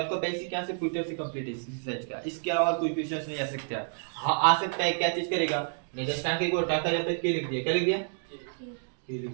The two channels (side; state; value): left; silent; digital silence